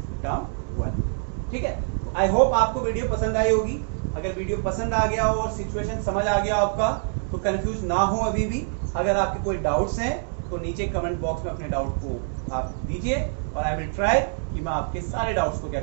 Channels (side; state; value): left; silent; 62 dB below the other